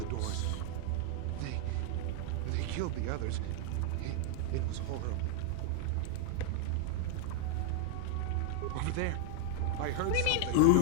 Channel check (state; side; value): different; both; correlation 0.00